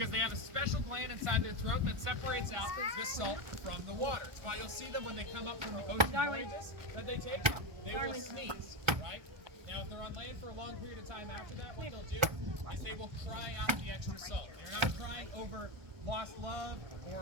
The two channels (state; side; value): late; left; 1.2 ms